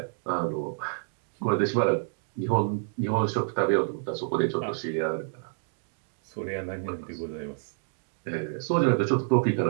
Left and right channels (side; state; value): left; silent; digital silence